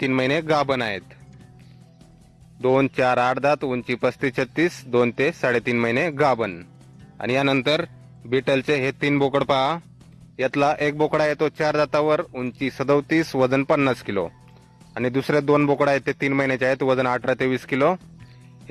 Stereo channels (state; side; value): identical; both; correlation 1.00